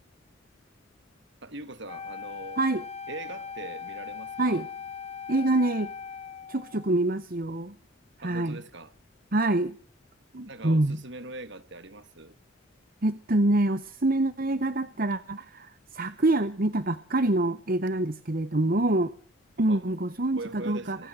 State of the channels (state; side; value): normal; both; correlation 0.52